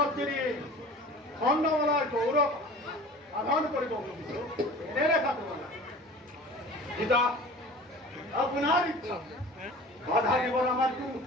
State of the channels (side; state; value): both; normal; correlation 0.41